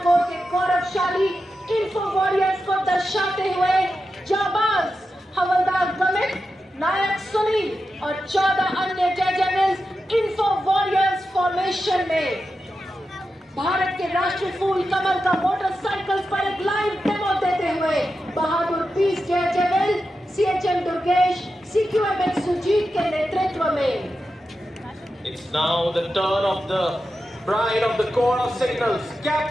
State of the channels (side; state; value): both; normal; correlation 0.90